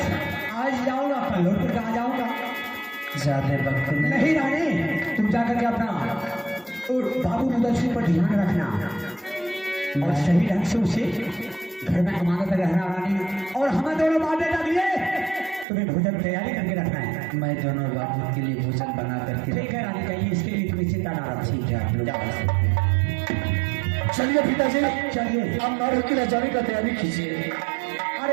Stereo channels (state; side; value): drops out; left; at 15.7 s